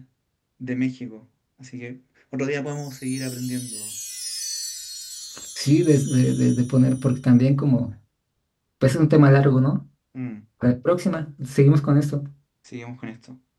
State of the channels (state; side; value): identical; both; correlation 1.00